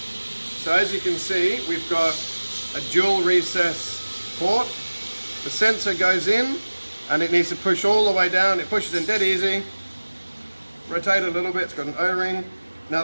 as you can see, we've got a dual recess port the sensor goes in and it needs to push all the way down. It pushes in dead easy. Rotate it a little bit, it's got an O-ring. Now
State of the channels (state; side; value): inverted; both; correlation -1.00